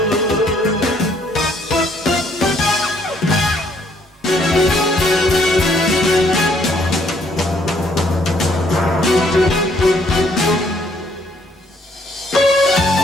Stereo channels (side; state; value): both; normal; correlation 0.67